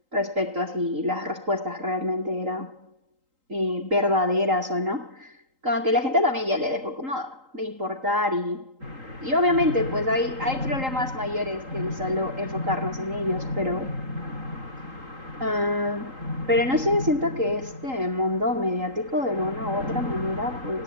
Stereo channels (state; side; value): late; left; 3.8 ms